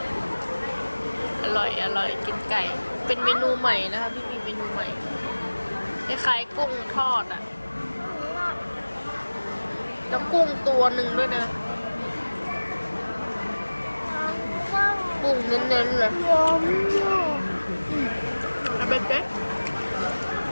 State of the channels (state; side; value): inverted; both; correlation -1.00